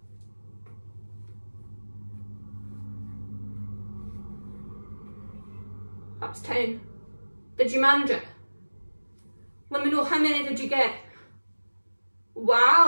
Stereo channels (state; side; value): inverted; both; correlation -1.00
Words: That's 10. Did you manage it? Let me know how many did you get. Wow,